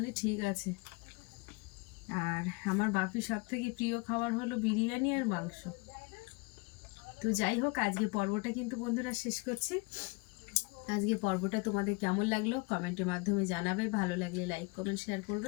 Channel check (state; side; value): quieter; right; 28.1 dB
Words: ঠিক আছে। আর আমার বাপির সব থেকে প্রিয় খাবার হলো বিরিয়ানি আর মাংস। তো যাই হোক, আজকে পর্বটা কিন্তু বন্ধুরা শেষ করছি। আজকে পর্বটা তোমাদের কেমন লাগলো কমেন্টের মাধ্যমে জানাবে, ভালো লাগলে লাইক কমেন্ট শেয়ার